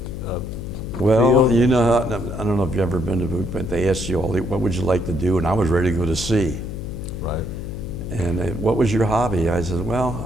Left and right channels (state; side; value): noise; left; hum, 7 dB below the sound